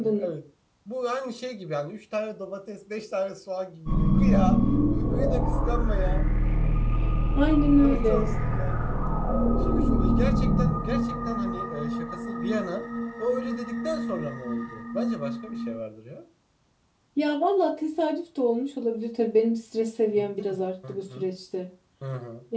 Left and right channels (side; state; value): both; identical; correlation 1.00